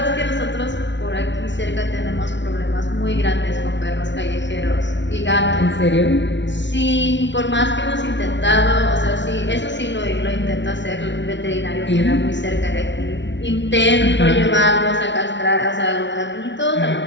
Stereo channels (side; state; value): right; late; 0.52 ms